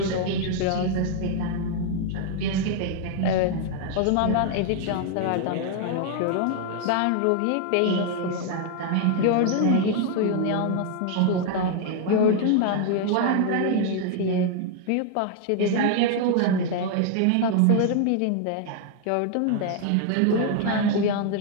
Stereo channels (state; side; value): different; both; correlation 0.00